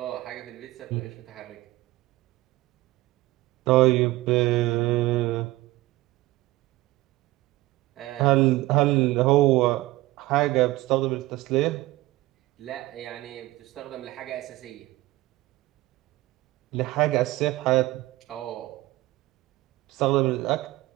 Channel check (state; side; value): quieter; left; 18.4 dB